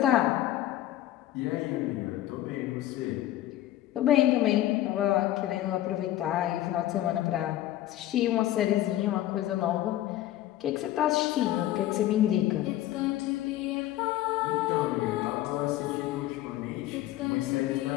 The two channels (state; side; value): quieter; right; 14.0 dB